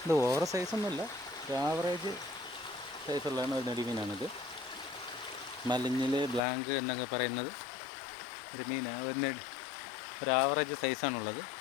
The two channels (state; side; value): drops out; right; at 6.4 s